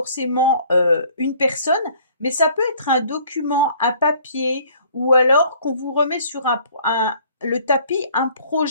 une personne, mais ça peut être un document, un papier, ou alors qu'on vous remet sur le tapis un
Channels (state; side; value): inverted; both; correlation -0.56